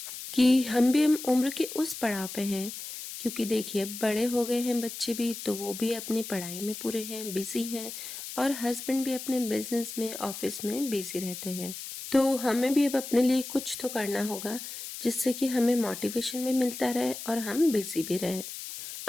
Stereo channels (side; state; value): left; noise; hiss, 9 dB below the sound